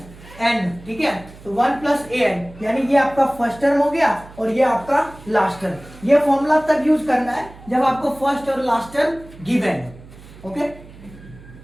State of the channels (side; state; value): right; noise; hum, 20 dB below the sound